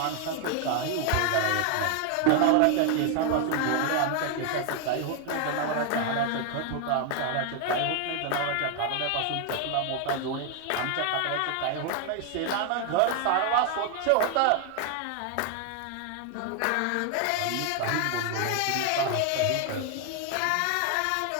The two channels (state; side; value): different; both; correlation 0.00